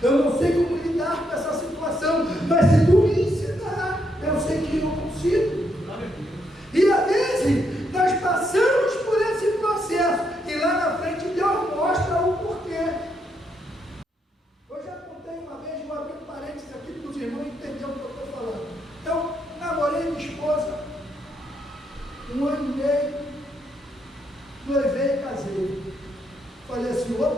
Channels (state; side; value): normal; both; correlation 0.77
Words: Eu não sei como lidar com essa situação, mas se tu me ensinar, eu sei que eu consigo. E às vezes nós passamos por esse processo e lá na frente Deus mostra o porquê. Eu já contei uma vez, vou abrir um parênteses aqui para os irmãos entenderem o que eu estou falando. Eu namorei minha esposa 1 ano e meio, noivei e casei. Falei assim,